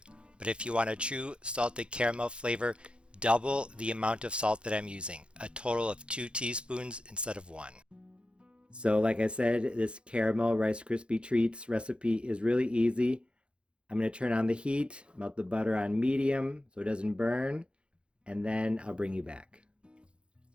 but if you want a true salted caramel flavor, double the amount of salt that I'm using, a total of 2 teaspoons instead of 1. So like I said, this caramel Rice Krispie treats recipe is really easy. I'm going to turn on the heat, melt the butter on medium so it doesn't burn, and then I'll bring you back.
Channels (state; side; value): late; left; 0.057 ms